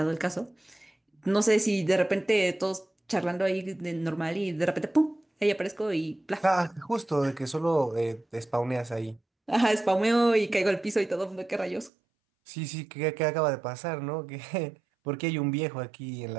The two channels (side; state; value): left; drops out; at 11.9 s